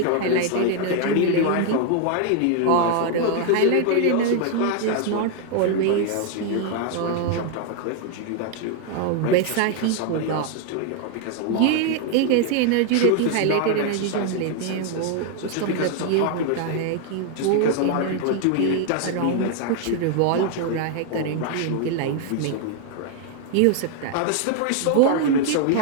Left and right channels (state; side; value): different; both; correlation 0.00